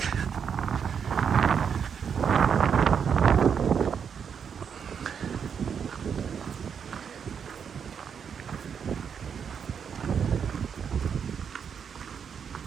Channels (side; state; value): left; quieter; 7.1 dB